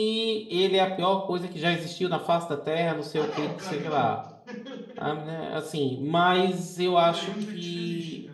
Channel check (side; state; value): both; identical; correlation 1.00